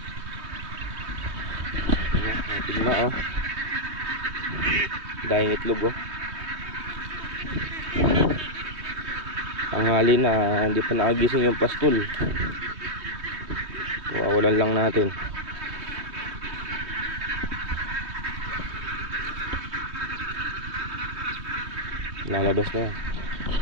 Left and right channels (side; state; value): left; late; 3.2 ms